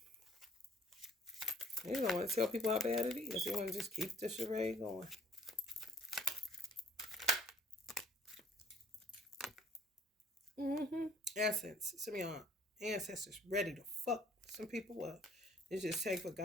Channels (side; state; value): both; normal; correlation 0.57